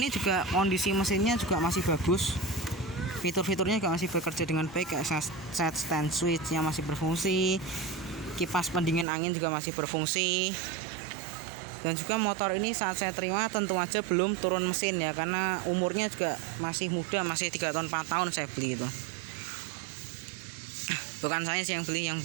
juga kondisi mesinnya juga masih bagus. Fitur-fiturnya juga masih bekerja dengan baik, kayak set stand switch-nya masih berfungsi. Kipas pendingin angin juga masih berfungsi. Dan juga motor ini saat saya terima tentu aja belum turun mesin ya, karena umurnya juga masih muda, masih 3 tahun 4 tahun saya beli itu. Bukan saya sih yang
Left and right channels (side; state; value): left; drops out; at 9.1 s